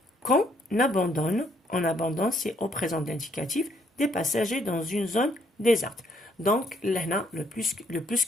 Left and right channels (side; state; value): both; normal; correlation 0.69